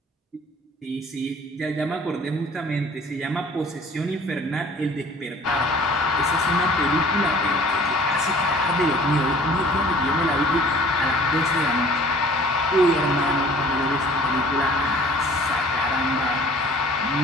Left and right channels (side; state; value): both; normal; correlation 0.51